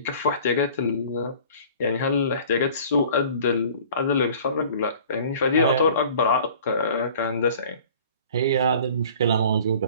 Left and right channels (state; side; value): inverted; both; correlation -0.48